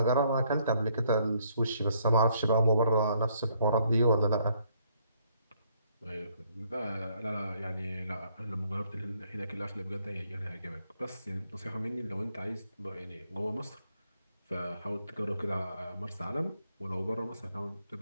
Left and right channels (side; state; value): both; inverted; correlation -0.69